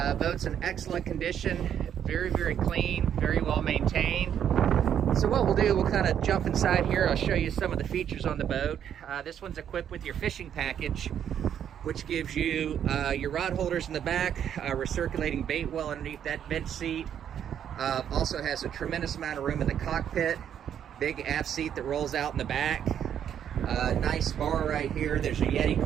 Boat's in excellent condition, very, very clean, very well maintained. So what we'll do, we'll kind of jump inside here. I'll show you some of the features on the boat. This one's equipped with your fishing package, which gives you your rod holders in the back, recirculating bait well underneath that bench seat. Also has a tremendous amount of room in the cockpit, big aft seat that rolls out in the back. Nice bar right here. There's a Yeti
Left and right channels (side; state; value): left; quieter; 9.2 dB